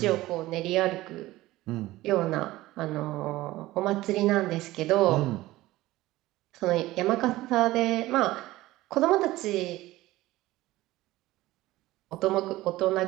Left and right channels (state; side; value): quieter; left; 17.5 dB